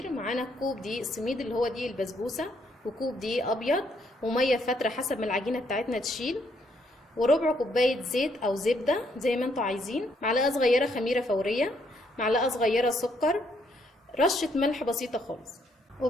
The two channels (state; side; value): normal; both; correlation 0.71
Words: معانا كوب دقيق السميد اللي هو دقيق البسبوسه، وكوب دقيق ابيض، وميه فتره حسب ما العجينه بتاعتنا تشيل، وربع كوبايه زيت او زبده زي ما انتوا عايزين، معلقه صغيره خميره فوريه، معلقه صغيره سكر، رشه ملح بسيطه خالص.